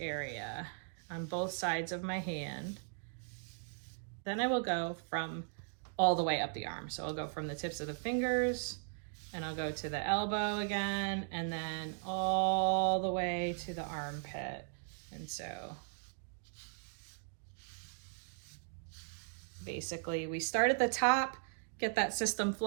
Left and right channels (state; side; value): silent; left; digital silence